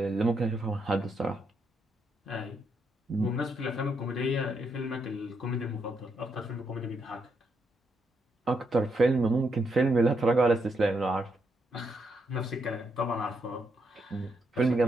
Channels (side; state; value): both; normal; correlation 0.78